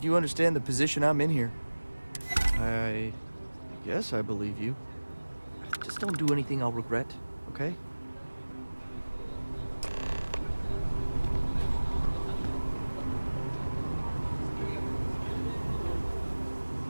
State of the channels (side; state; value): both; inverted; correlation -1.00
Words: you understand the position I'm in here. I guess I believe you. Just don't do anything I'll regret, okay?